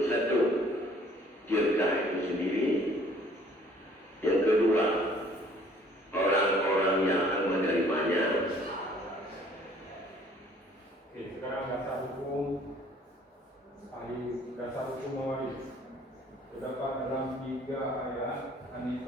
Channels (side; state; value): both; normal; correlation 0.57